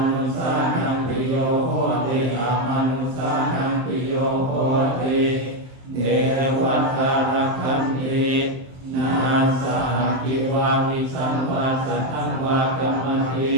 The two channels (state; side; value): late; left; 23 ms